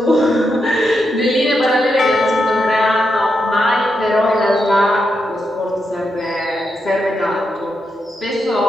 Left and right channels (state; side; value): normal; both; correlation 0.84